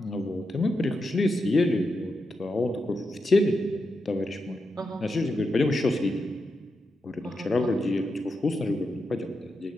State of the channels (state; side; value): normal; both; correlation 0.87